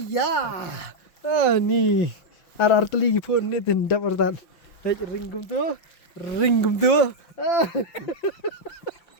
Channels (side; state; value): right; late; 5.9 ms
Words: Ni. Ar teligi pun ni tindak pertan. Ringgum tu.